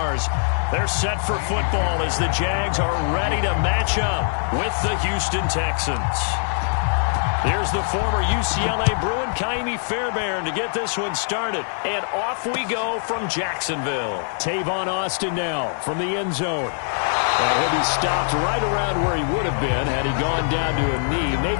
They're set for football as the Jags are ready to match up with the Houston Texans. Here's the former UCLA Bruin, Kaimi Fairbairn, to get this one started. And off we go from Jacksonville. Tavon Austin now from the end zone. And he'll be stopped right around where he would have been had he gone down to a knee,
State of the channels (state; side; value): silent; right; digital silence